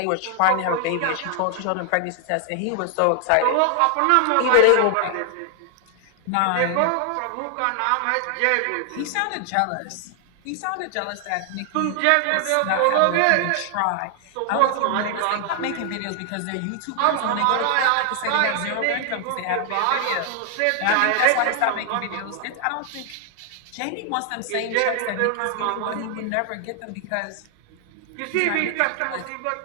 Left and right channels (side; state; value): both; different; correlation 0.00